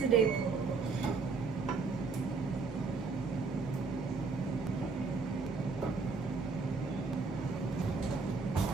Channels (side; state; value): left; quieter; 4.5 dB